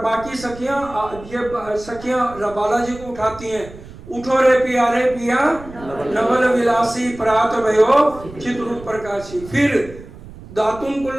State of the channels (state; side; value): noise; right; rumble, 17 dB below the sound